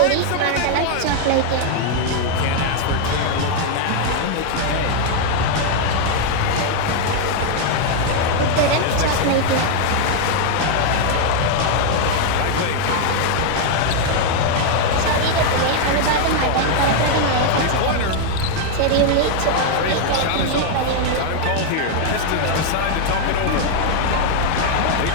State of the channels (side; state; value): both; different; correlation 0.00